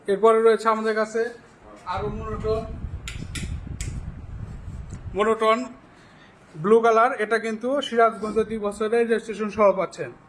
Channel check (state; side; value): identical; both; correlation 1.00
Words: এরপরে রয়েছে আমাদের কাছে আরো মনোটন ব্লু কালার, এটা কিন্তু সিরাজগঞ্জে 2 বছরের রেজিস্ট্রেশন সহ পাচ্ছেন,